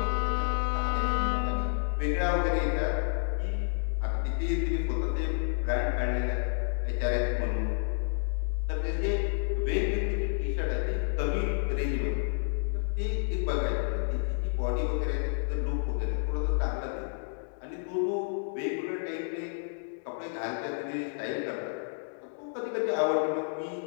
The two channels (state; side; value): silent; right; digital silence